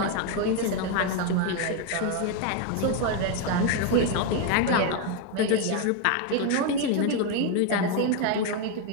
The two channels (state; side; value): different; both; correlation 0.01